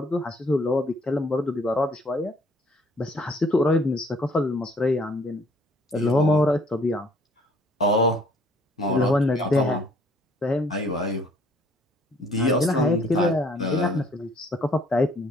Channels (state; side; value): normal; both; correlation 0.60